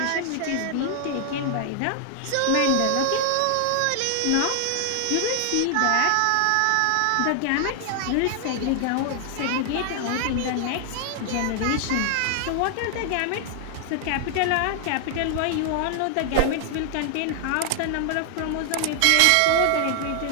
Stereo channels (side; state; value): both; different; correlation 0.00